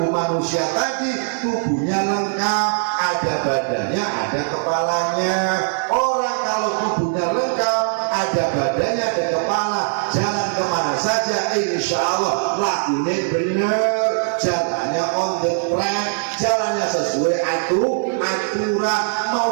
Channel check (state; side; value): silent; left; digital silence